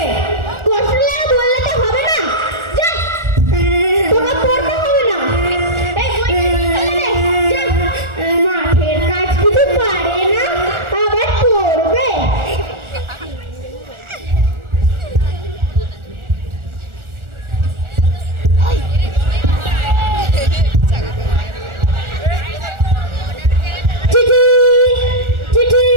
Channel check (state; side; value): late; left; 1.4 ms